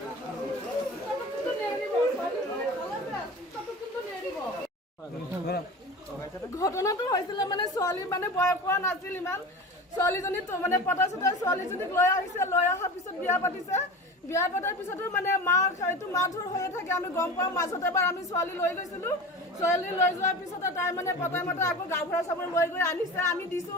ঘটনাটো হৈছিল মানে ছোৱালী মানে বয়স হোৱা নাছিল ইমান ছোৱালীজনী তো মানে পতা চতা ছোৱালীজনীক লৈ আহিছে লৈ অহাৰ পিছত বিয়া পাতিছে বিয়া পতাৰ পিছতো মানে এইটো মাৰধৰ হৈয়ে থাকে আমি গম পাওঁ মাজতে এবাৰ আমি ছোৱালী লৈ গৈছিলোঁ ছোৱালী লৈ যোৱাৰ পিছতে তাই মানে পতাই মতে আকৌ গাঁওবুঢ়া চাবৰ লৈ গৈ আনিছে আমি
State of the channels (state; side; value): normal; both; correlation 0.32